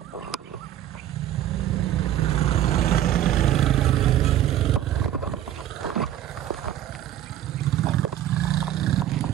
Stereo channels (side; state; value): left; quieter; 11.9 dB